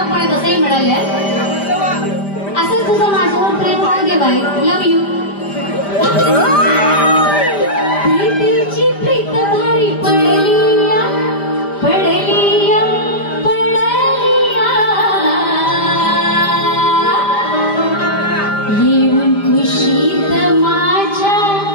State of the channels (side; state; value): right; late; 5.0 ms